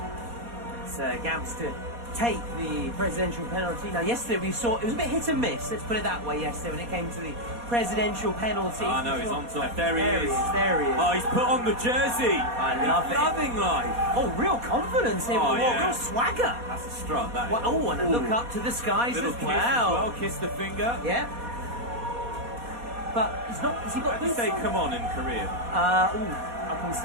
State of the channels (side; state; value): left; late; 4.2 ms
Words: It's Gamps to take the presidential penalty. Now, yesterday we saw it was a bit hit and miss. Let's put it that way. Yesterday, when it came to the presidential penalty. Oh no, he's on top. There he is. There he is. Oh, he's put on the jersey. I love he's it. Loving life. Oh, real confidence here. Oh, yeah. Real swagger. That's a strut. That is. Well, oh, and a look up to the skies Little as kiss well. as well. Kiss the finger. Yeah. But he's not. Has he got How do you boots say on? "come on" in Korean? I can